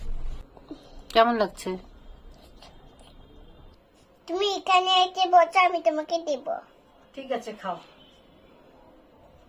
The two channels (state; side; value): identical; both; correlation 1.00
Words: কেমন লাগছে? তুমি এখানে এসে বসো, আমি তোমাকে দেব। ঠিক আছে, খাও।